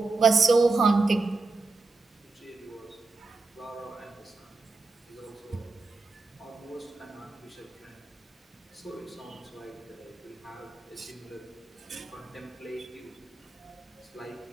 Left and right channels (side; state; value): left; quieter; 3.7 dB